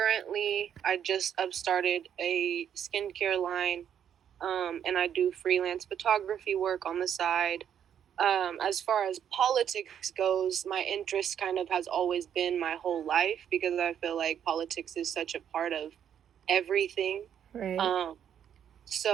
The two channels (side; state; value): left; quieter; 9.1 dB